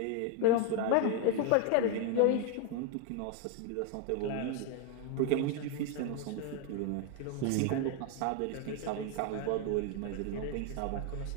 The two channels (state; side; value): different; both; correlation 0.01